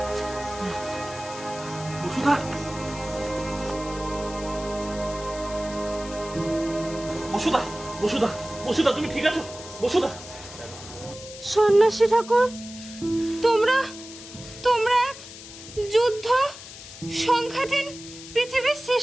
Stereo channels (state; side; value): noise; left; hiss, 14 dB below the sound